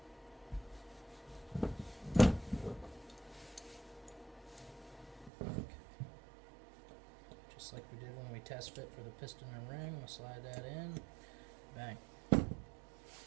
Just like we did when we test fit for the piston and ring, we'll slide that in. Bang.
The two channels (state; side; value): drops out; left; at 5.3 s